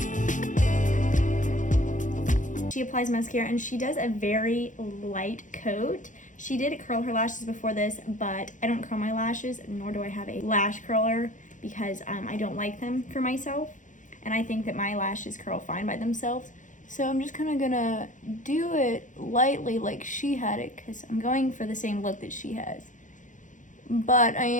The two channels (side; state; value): right; late; 0.37 ms